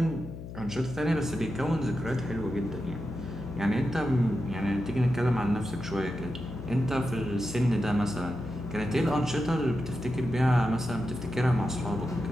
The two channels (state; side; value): noise; left; hum, 10 dB below the sound